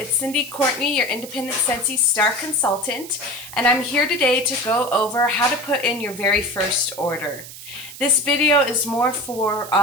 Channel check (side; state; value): right; noise; hiss, 14 dB below the sound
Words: Cindy Courtney, your independent Scentsy star consultant, and I'm here today to go over how to put in your very first order. This video is more for